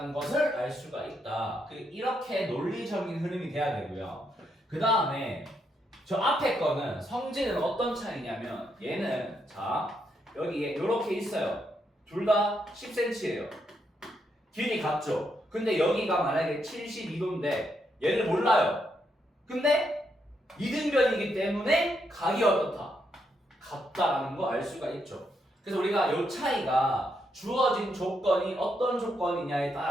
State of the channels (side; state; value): both; normal; correlation 0.79